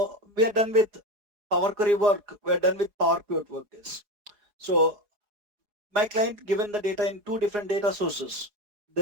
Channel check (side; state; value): left; late; 4.8 ms